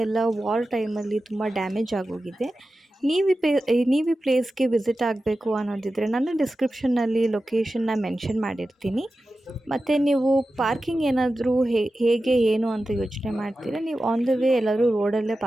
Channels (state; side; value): normal; both; correlation 0.93